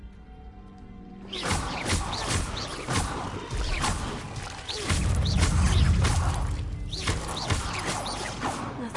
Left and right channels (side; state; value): both; identical; correlation 1.00